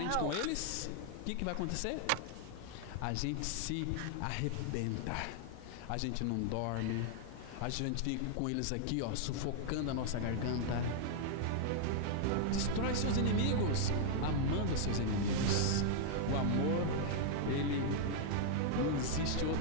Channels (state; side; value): different; both; correlation 0.00